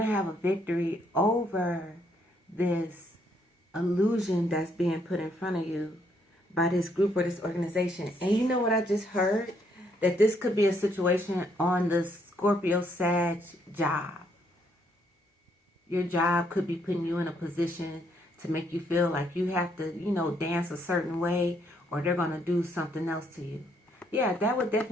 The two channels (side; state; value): both; normal; correlation 0.71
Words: have a victory over this illusion that's being put in front of you by this group or this organization. And you know what I just heard? That this could be a situation on the Scorpio, Sag job. Your job could be putting you in a position to make you feel like you have to, you know, dance a certain way or they're going to do something else to you. Yeah, that would